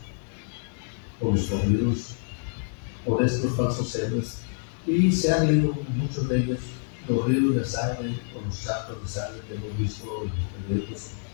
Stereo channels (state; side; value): silent; right; 60 dB below the other